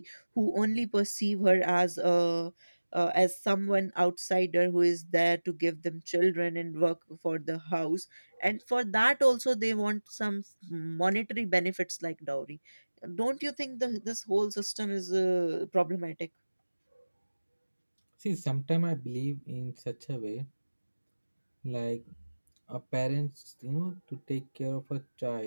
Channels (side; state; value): both; inverted; correlation -1.00